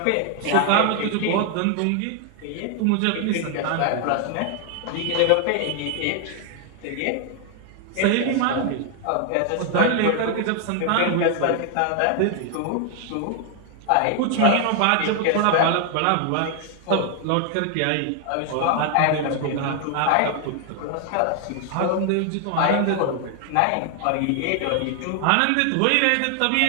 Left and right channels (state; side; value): different; both; correlation 0.00